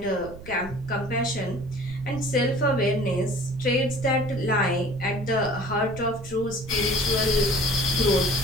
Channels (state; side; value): noise; right; rumble, 15 dB below the sound